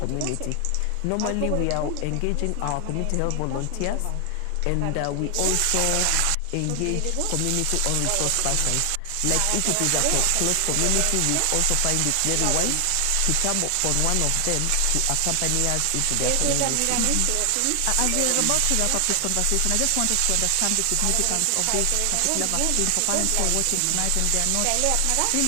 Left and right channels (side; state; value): both; different; correlation 0.00